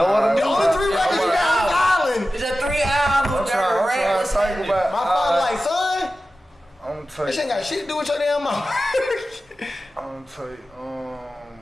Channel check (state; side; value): normal; both; correlation 0.94